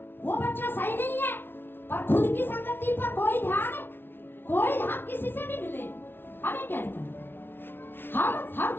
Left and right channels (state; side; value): late; right; 0.11 ms